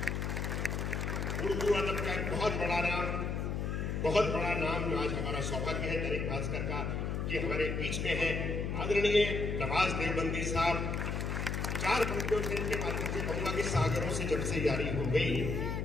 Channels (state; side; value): noise; left; hum, 1 dB below the sound